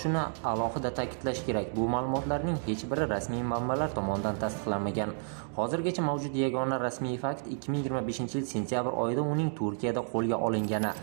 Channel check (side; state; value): left; silent; 56 dB below the other